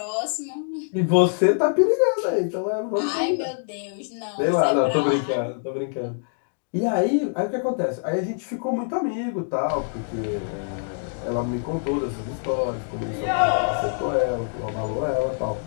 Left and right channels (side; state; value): right; silent; digital silence